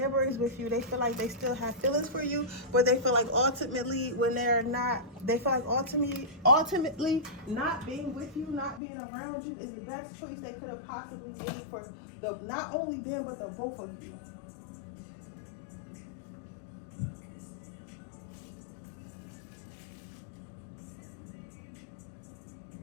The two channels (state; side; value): drops out; right; at 8.8 s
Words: with you. They feel like they still have feelings for you, but they feel like ultimately when they're not, they feel like ultimately not being with you, not being around you is the best choice they could have possibly made for not only them, but the both of you.